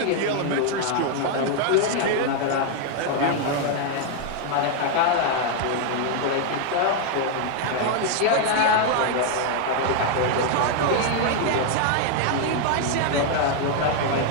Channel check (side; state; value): both; different; correlation 0.00